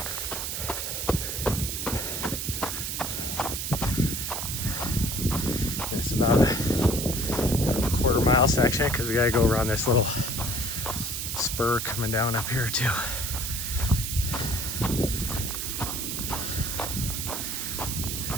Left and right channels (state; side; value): noise; right; hiss, 3 dB below the sound